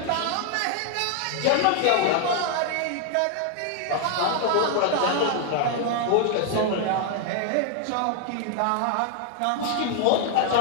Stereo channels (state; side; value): different; both; correlation 0.00